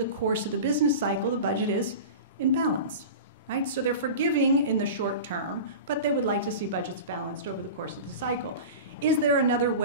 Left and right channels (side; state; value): both; inverted; correlation -0.31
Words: course of the business cycle, the budget is in balance. Right? So they're forgiving in the short term, but they would like to see budgets balanced over the course of the cycle. Is there another